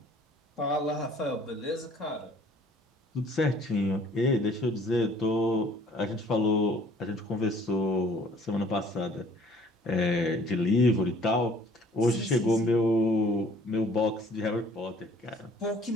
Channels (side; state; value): both; normal; correlation 0.56